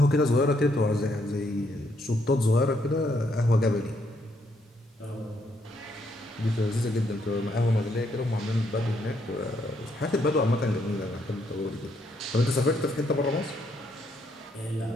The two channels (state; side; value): normal; both; correlation 0.73